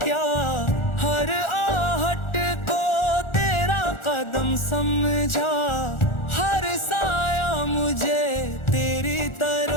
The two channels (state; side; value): late; right; 1.4 ms